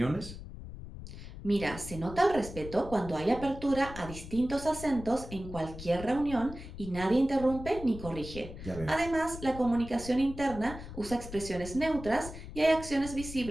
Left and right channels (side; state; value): left; noise; rumble, 12 dB below the sound